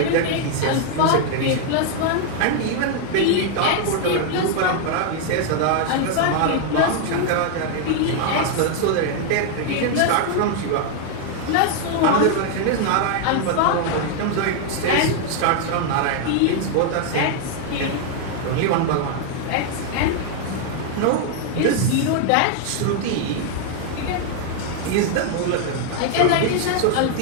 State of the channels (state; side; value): different; both; correlation 0.00